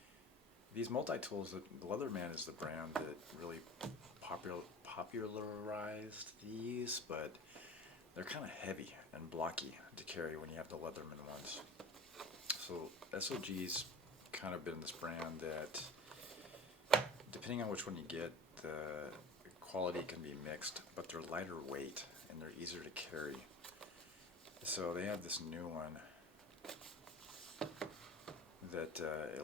these multi-tools, the Leatherman is the brand that really popularized these, but they're kind of heavy and blocky to carry when you have the Leatherman ones. So SOG's kind of been this brand that, depending on which one you get, the quality can be mixed, but they're lighter weight and they're easier to carry. So they have this new one that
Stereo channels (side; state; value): both; normal; correlation 0.37